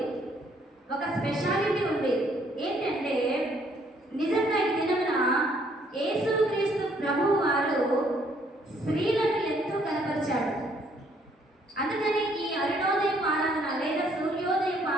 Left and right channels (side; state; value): both; normal; correlation 0.66